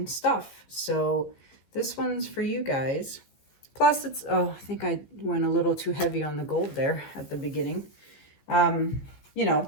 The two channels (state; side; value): late; right; 15 ms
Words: stuff. So this one's for you guys. Plus it's, oh, I think I went a little too heavy on the gold there at the beginning. You know,